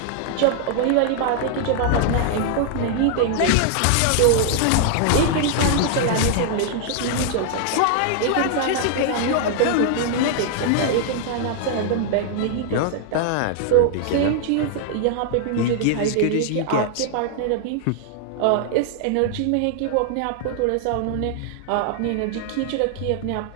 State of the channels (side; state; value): both; different; correlation 0.00